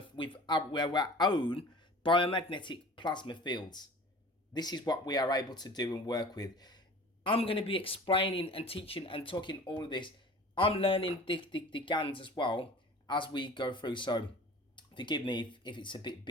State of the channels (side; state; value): both; normal; correlation 0.43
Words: with our own biomagnetic plasma fields. This is what we are able to do and work with. I'm going to be explaining and teaching and talking all of this. I'm learning the GANs as well as we go through, so forgive me if it's a bit